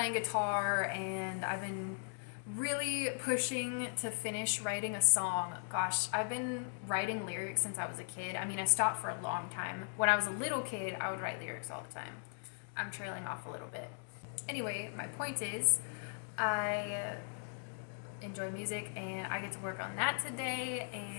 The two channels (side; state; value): right; silent; digital silence